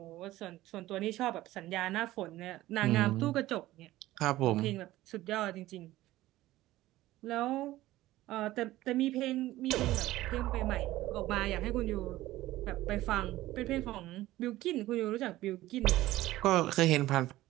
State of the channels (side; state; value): left; quieter; 16.2 dB